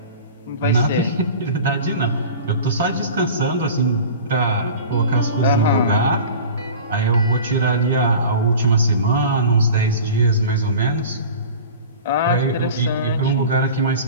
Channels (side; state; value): both; inverted; correlation -0.37